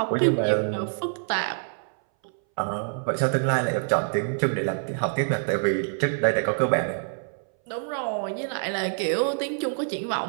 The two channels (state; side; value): silent; left; 59 dB below the other